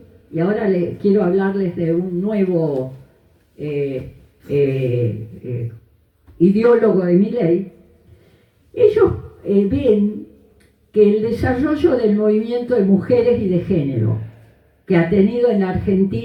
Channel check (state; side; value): identical; both; correlation 1.00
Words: y ahora quiero hablarles de un nuevo ideólogo de Milei. Ellos ven que el desarrollo del movimiento de mujeres y de género que ha tenido en la